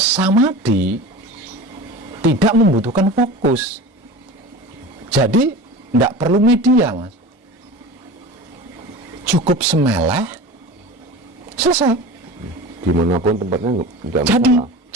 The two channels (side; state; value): both; normal; correlation 0.34